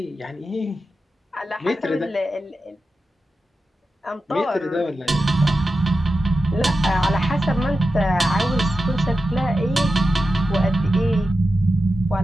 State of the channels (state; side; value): normal; both; correlation 0.91